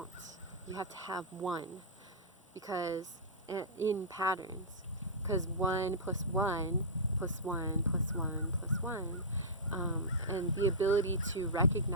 you have to have 1, because in patterns, because 1 plus 1 plus 1 plus 1 plus 1, and the ability to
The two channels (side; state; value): both; normal; correlation -0.15